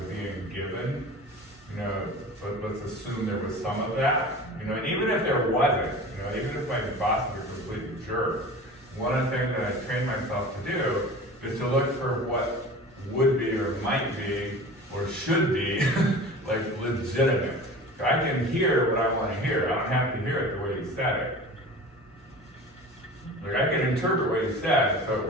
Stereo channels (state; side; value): normal; both; correlation 0.37